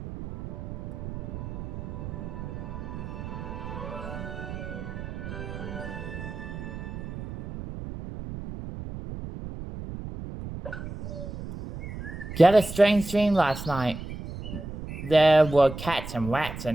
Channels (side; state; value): right; noise; rumble, 9 dB below the sound